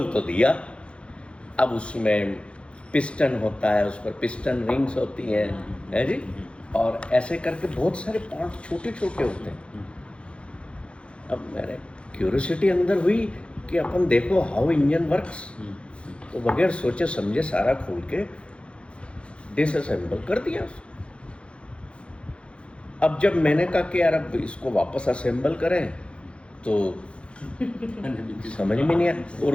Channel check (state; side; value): late; right; 0.059 ms